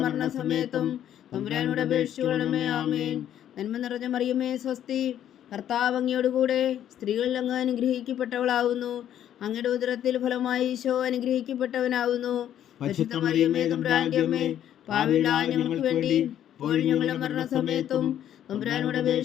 മരണസമയത്തും തമ്പുരാനോട് അപേക്ഷിച്ചുകൊള്ളണമേ. ആമേൻ. നന്മ നിറഞ്ഞ മറിയമേ സ്വസ്തി, കർത്താവ് അങ്ങയുടെ കൂടെ സ്ത്രീകളിൽ അങ്ങ് അനുഗ്രഹിക്കപ്പെട്ടവളാകുന്നു. അങ്ങയുടെ ഉദരത്തിൽ ഫലമായി ഈശോ അനുഗ്രഹിക്കപ്പെട്ടവനാകുന്നു. പരിശുദ്ധ മറിയമേ തമ്പുരാന്റെ അമ്മേ, പാപികളായ ഞങ്ങൾക്ക് വേണ്ടി ഇപ്പോഴും ഞങ്ങളുടെ മരണസമയത്തും തമ്പുരാനോട്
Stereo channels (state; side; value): quieter; right; 10.8 dB